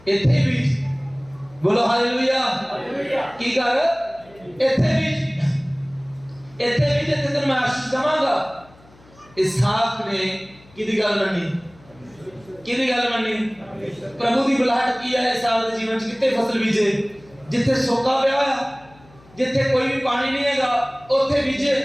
इत्थे बीज। बोलो हालेलुया, हालेलुया। की कर इत्थे बीज, इत्थे बीज, इत्थे तेनूं मैं आशीष देवांगा। इसहाक ने किदी गल मन्नी, किदी गल मन्नी, प्रभु की बुलाहट की है। इसहाक दे जीवन च कित्थे फसल बीजे, जिथे सोका पिया होया, जिथे कोई भी पानी नहीं हैगा, उत्थे बीजे।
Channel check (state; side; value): noise; left; hum, 26 dB below the sound